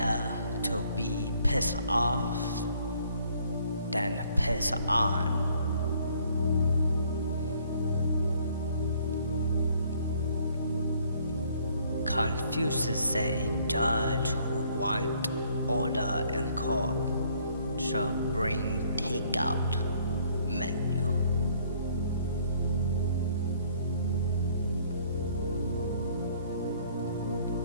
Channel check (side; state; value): both; inverted; correlation -0.62